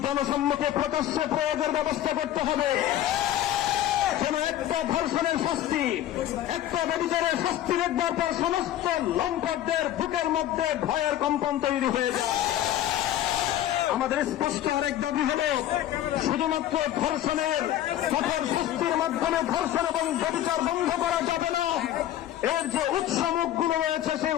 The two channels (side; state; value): right; quieter; 12.5 dB